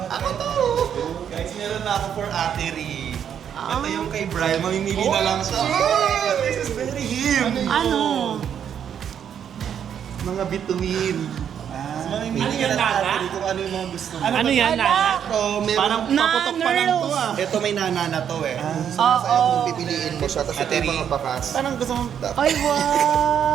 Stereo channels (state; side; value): quieter; left; 8.7 dB